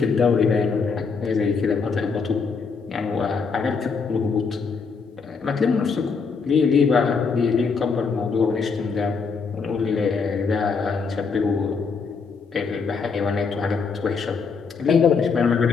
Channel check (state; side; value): quieter; right; 5.2 dB